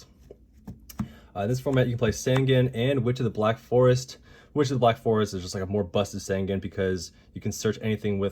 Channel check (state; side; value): identical; both; correlation 1.00